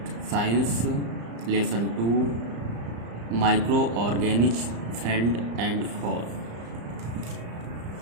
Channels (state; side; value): late; left; 35 ms